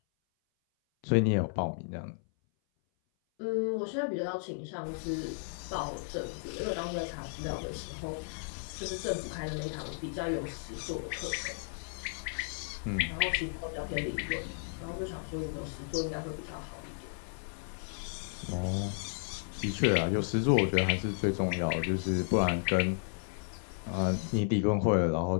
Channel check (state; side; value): silent; right; 55 dB below the other